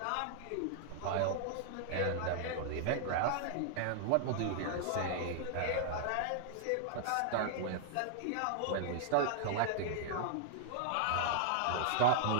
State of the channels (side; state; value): both; different; correlation -0.01